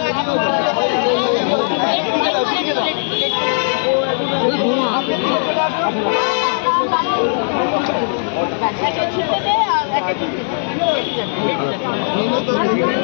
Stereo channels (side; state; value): right; silent; digital silence